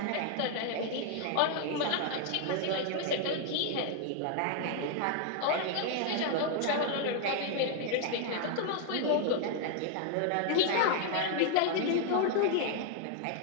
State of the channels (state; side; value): different; both; correlation 0.00